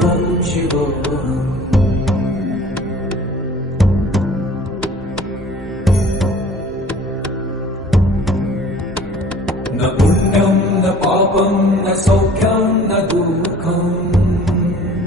शिवोऽहम् न पुण्यं न पापं न सौख्यं न दुःखम्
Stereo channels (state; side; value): normal; both; correlation 0.48